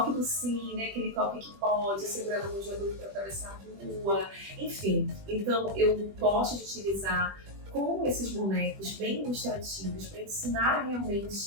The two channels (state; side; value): late; left; 20 ms